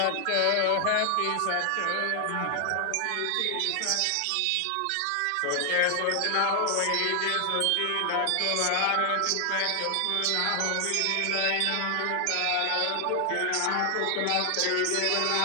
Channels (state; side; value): different; both; correlation 0.00